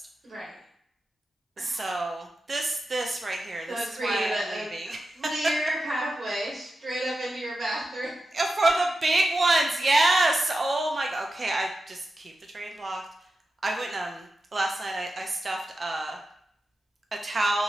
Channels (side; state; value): both; normal; correlation 0.91